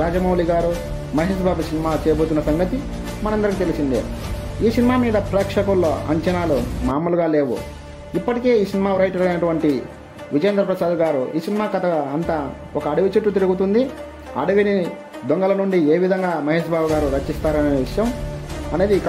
రాజమౌళి గారు మహేష్ బాబు సినిమా చేయబోతున్న సంగతి మనందరికీ తెలిసిందే. ఈ సినిమా మీద ప్రేక్షకుల్లో అంచనాలు మామూలుగా లేవు. ఇప్పటికే ఈ సినిమా రైటర్ అయినటువంటి విజేంద్ర ప్రసాద్ గారు ఈ సినిమా కథ అంతా ఒక అడవి చుట్టూ తిరుగుతుంది. అడవిని దొంగల నుండి ఏ విధంగా మహేష్ బాబు గారు రచిస్తారనే విషయం అనేది ఈ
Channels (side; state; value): both; identical; correlation 1.00